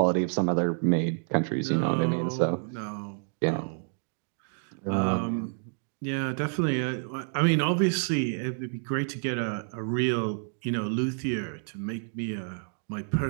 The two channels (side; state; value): left; silent; 59 dB below the other